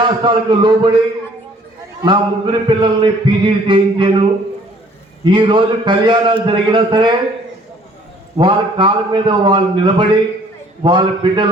లోబడి నా 3 పిల్లల్ని పీజీలు చేయించాను. ఈరోజు కళ్యాణాలు జరిగినా సరే వాళ్ళ కాళ్ళ మీద వాళ్ళు నిలబడి వాళ్ళ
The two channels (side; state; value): both; normal; correlation 0.58